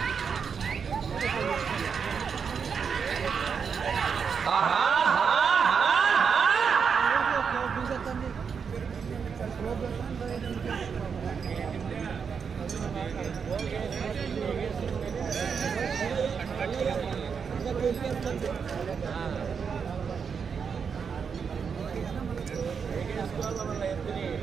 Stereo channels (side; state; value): left; quieter; 6.3 dB